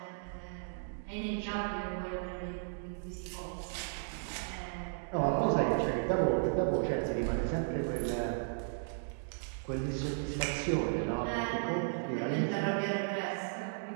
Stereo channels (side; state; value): left; silent; digital silence